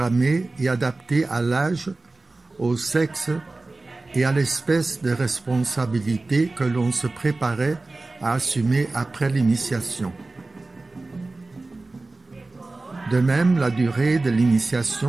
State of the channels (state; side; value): quieter; left; 3.2 dB